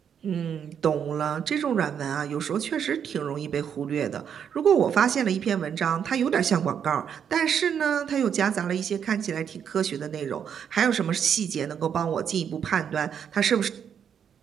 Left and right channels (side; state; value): left; quieter; 8.0 dB